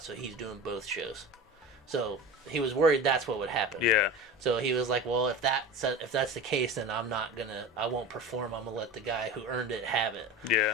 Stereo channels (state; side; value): normal; both; correlation 0.31